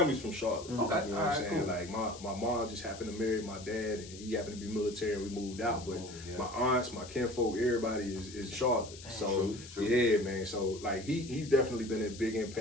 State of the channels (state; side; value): noise; left; hiss, 16 dB below the sound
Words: from Charlotte. Okay, you know what I'm saying? Cool. Like my mom just happened to marry my dad, and he happened to be military, and we moved out. But my aunts, my kinfolk, everybody is Charlotte. So true. Yeah, man. So like he's definitely been a big